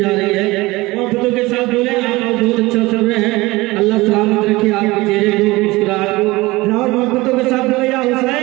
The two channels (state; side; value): quieter; left; 20.9 dB